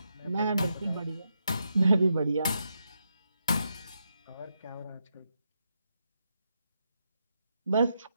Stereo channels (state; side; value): inverted; both; correlation -0.83